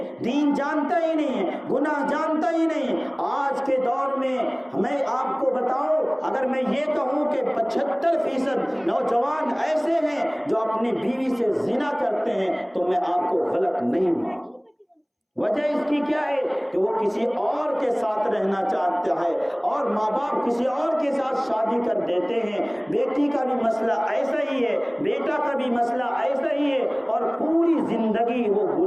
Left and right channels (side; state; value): both; identical; correlation 1.00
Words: دین جانتا ہی نہیں ہے, گناہ جانتا ہی نہیں. آج کے دور میں میں آپ کو بتاؤں, اگر میں یہ کہوں کہ 75% نوجوان ایسے ہیں جو اپنی بیوی سے زنا کرتے ہیں, تو میں آپ کو غلط نہیں مانوں. وجہ اس کی کیا ہے کہ وہ کسی اور کے ساتھ رہنا چاہتا ہے, اور ماں باپ کسی اور کے ساتھ شادی کر دیتے ہیں. بیٹی کا بھی مسئلہ ایسا ہی ہے, بیٹا کا بھی مسئلہ ایسا ہی ہے, اور پوری زندگی وہ